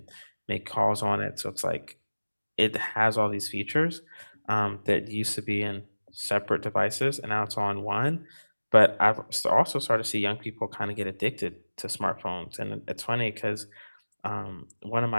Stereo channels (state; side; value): inverted; both; correlation -1.00